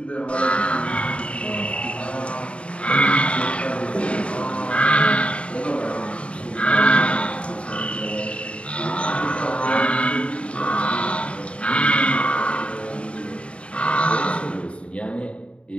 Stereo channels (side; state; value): right; late; 0.060 ms